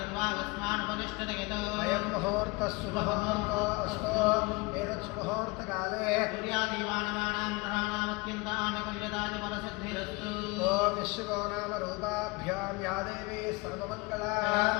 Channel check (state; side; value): quieter; right; 25.6 dB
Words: यतो अयं मुहूर्तः सुमुहूर्तो अस्तु। एतत् सुमुहूर्तकाले सूर्यादिवानवानां ग्रहाणामत्यन्तानुकूल्यतानि फलसिद्धिरस्तु। ॐ विश्वको नाम रूपाभ्यां या देवी सर्वमङ्गला